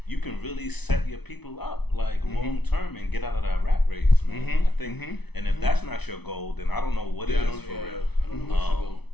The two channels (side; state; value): right; late; 0.99 ms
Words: you can really set your people up like long term and get out of that rat race, man. I think, and if that's not your goal, then I don't know what it is for real. I don't know what's your goal.